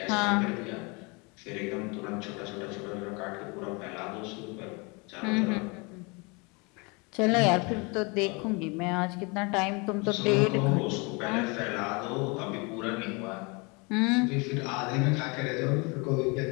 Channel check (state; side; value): quieter; right; 29.4 dB